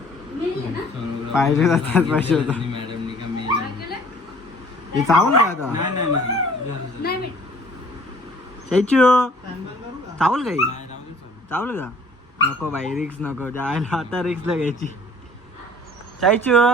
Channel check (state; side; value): normal; both; correlation 0.54